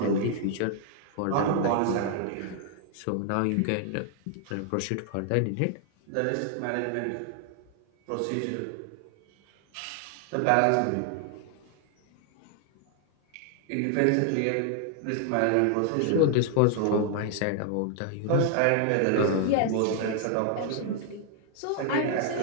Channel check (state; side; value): different; both; correlation 0.00